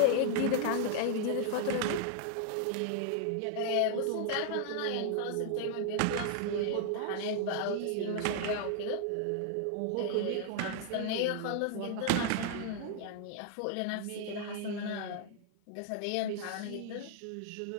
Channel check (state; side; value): different; both; correlation 0.00